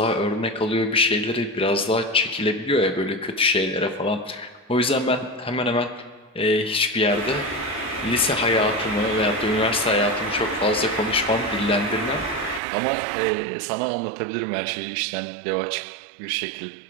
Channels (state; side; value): drops out; left; at 12.6 s